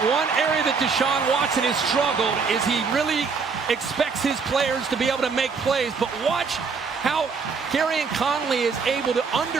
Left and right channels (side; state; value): left; quieter; 5.2 dB